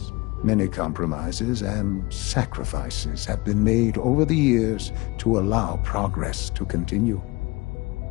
Many compromises and sacrifices have been made over the years to allow progress to continue.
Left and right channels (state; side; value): quieter; right; 23.8 dB